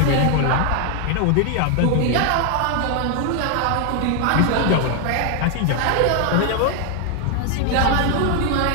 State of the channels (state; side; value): different; both; correlation 0.00